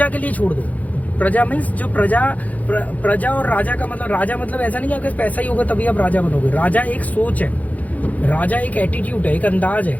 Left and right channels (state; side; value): late; right; 0.075 ms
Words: के लिए छोड़ दो। प्रजा मीन्स जो प्रजा और राजा का मतलब, राजा मतलब ऐसा नहीं कि आपके पास पैसा ही होगा तभी आप राजा बनोगे। राजा एक सोच है, राजा एक एटीट्यूड है, एक अंदाज है